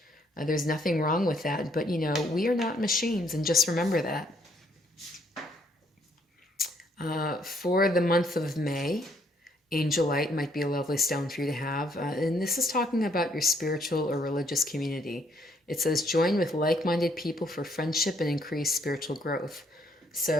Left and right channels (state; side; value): normal; both; correlation 0.68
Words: There's nothing wrong with that, but, we are not machines, and just remember that. For the month of May, angelite might be a lovely stone for you to have. And this is talking about your spiritual or religious community. It says, join with like-minded people for friendship and increased spiritual growth.